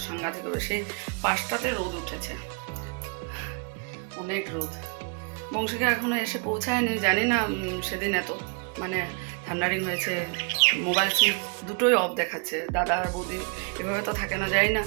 সাংঘাতিক হবে। সেই 5টাতে রোদ উঠেছে, অনেক রোদ। বংশিকা এখনো এসে পৌঁছায়নি, জানি না সেদিন এত মানে থান্ডারিং হয়েছে, মোবাইল সুইচ দুটোই অফ দেখাচ্ছে। দাদা আর বৌদি এভাবে তো থাকে না, যাই না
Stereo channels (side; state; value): left; quieter; 37.4 dB